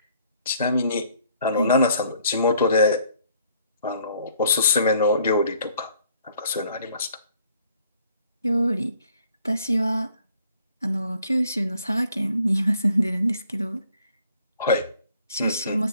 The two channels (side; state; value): both; inverted; correlation -0.62